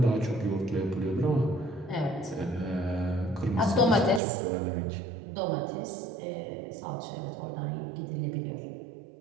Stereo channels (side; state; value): left; drops out; at 4.2 s